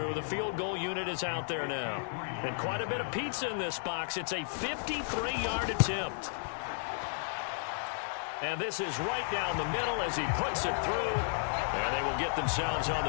The field goal unit is out there now. And quite a bit of pizza in this box. It's a 53-yard attempt. And this is right down the middle as he puts it through. And they will get themselves on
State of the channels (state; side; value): silent; right; digital silence